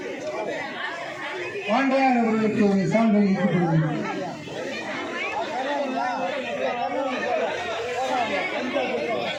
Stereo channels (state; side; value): identical; both; correlation 1.00